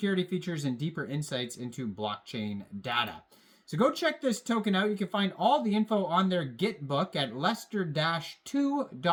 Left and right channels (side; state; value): both; identical; correlation 1.00